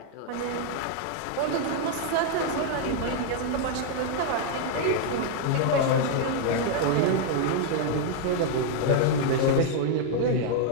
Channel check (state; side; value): different; both; correlation 0.00